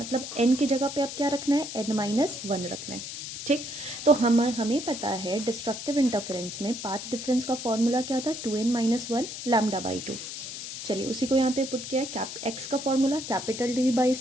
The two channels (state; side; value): noise; left; hiss, 8 dB below the sound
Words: n की जगह पे अब क्या रखना है, n-1 रखना है, ठीक। तो हमें पता है डिस्ट्रक्टिव इंटरफेरेंस में पाथ डिफरेंस का फॉर्मूला क्या था, 2n-1 लैम्डा बाई 2। चलिए उसी को यहाँ पे पुट किया है, एक्स का formula capital D by